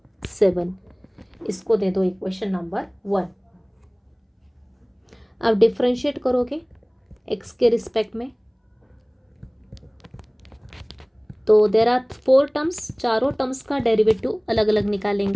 7। इसको दे दो इक्वेशन नंबर 1। अब डिफ्रेंशिएट करोगे, एक्स के रिस्पेक्ट में। तो देयर आर 4 टर्म्स, चारों टर्म्स का डेरिवेटिव अलग अलग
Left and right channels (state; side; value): identical; both; correlation 1.00